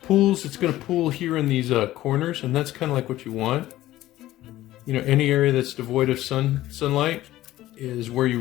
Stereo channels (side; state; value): right; quieter; 15.2 dB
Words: pools, it's going to pool here in these corners, and that's kind of like what you want. You know, any area that's devoid of sunlight is where you